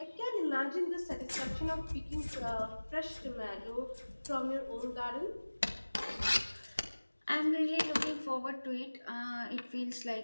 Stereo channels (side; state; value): both; inverted; correlation -1.00